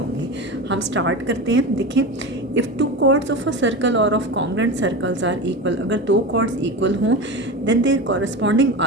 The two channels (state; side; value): normal; both; correlation 0.25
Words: हम स्टार्ट करते हैं। देखें, if two chords of a circle और of congruent circles are equal, अगर दो कॉर्ड्स इक्वल हों देन देयर कॉरस्पॉन्डिंग